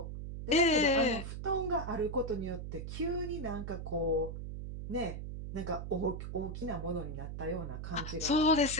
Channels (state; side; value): noise; right; hum, 7 dB below the sound